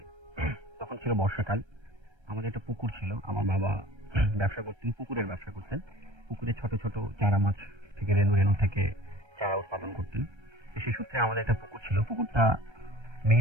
তখন ছিল বর্ষাকাল। আমাদের একটা পুকুর ছিল, আমার বাবা ব্যবসা করতেন, পুকুরের ব্যবসা করতেন। পুকুরে ছোট ছোট চারা মাছ থেকে রেণু থেকে চারা উৎপাদন করতেন। সেই সূত্রে আমাদের একটা পুকুর ছিল। পুকুরটা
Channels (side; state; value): left; late; 1.3 ms